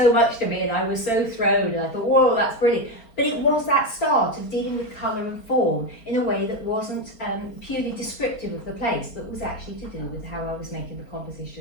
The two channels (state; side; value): late; right; 4.5 ms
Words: much to me, and I was so thrown, and I thought, whoa, that's brilliant. But it was that start of dealing with colour and form in a way that wasn't purely descriptive of the place, but was actually to do with how I was making the